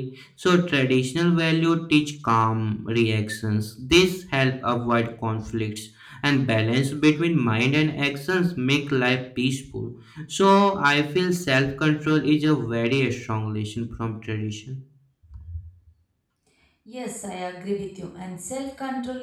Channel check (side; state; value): both; identical; correlation 1.00